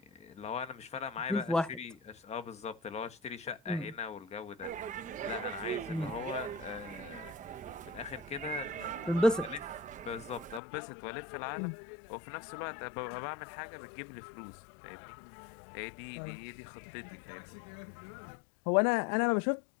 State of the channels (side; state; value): right; drops out; at 10.6 s